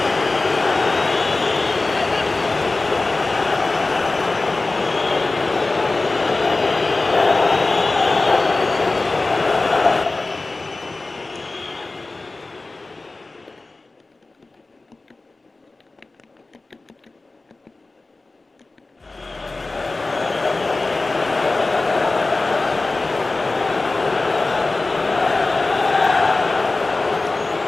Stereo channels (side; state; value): right; quieter; 3.3 dB